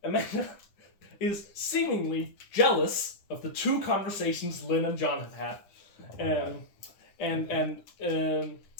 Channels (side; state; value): right; late; 9.9 ms